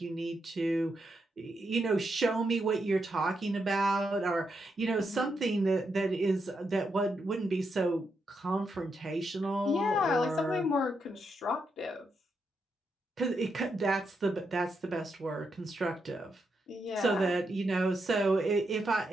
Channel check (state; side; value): normal; both; correlation 0.82